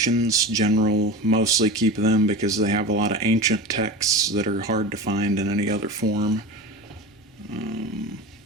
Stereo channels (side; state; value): both; normal; correlation 0.29